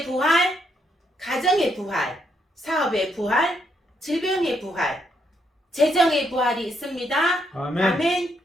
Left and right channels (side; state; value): both; normal; correlation 0.76